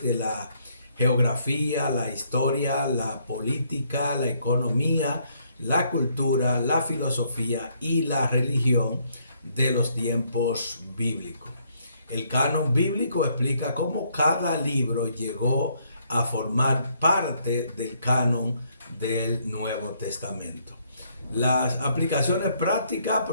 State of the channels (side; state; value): both; inverted; correlation -0.70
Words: de la geografía, la historia, la política, la economía, la cultura, la filosofía y la religión de los tiempos bíblicos. El canon bíblico explica cómo cada libro llegó a formar parte del canon del Nuevo Testamento. Las aplicaciones prácticas